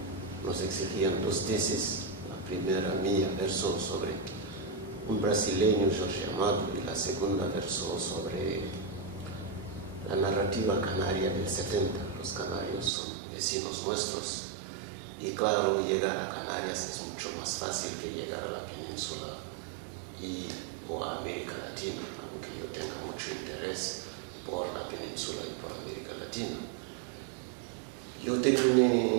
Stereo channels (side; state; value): left; drops out; at 12.9 s